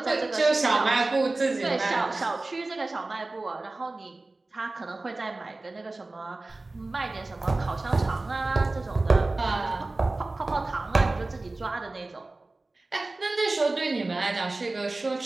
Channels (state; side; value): quieter; left; 3.1 dB